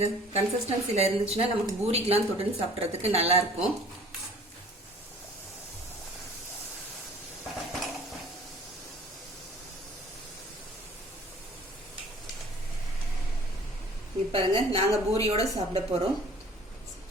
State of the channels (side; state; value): both; normal; correlation 0.51